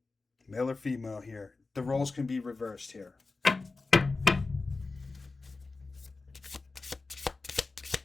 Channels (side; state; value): right; quieter; 3.8 dB